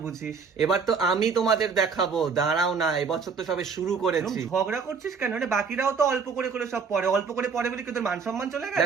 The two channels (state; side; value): quieter; left; 5.4 dB